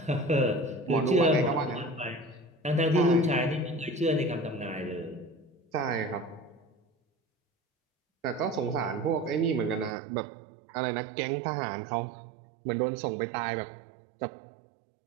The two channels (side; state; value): left; drops out; at 9.9 s